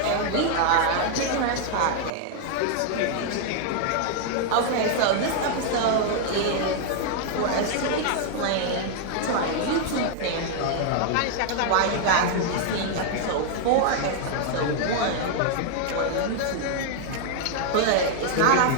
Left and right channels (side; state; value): both; different; correlation 0.00